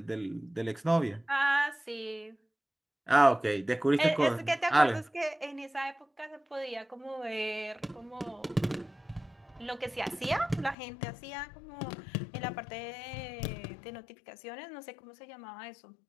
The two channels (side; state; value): right; drops out; at 10.8 s